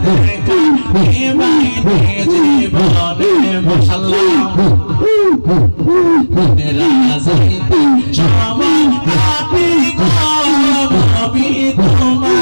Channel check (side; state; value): both; inverted; correlation -1.00